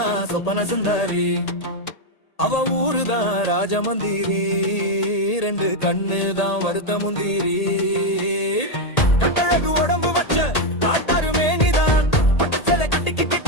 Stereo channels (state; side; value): late; right; 1.8 ms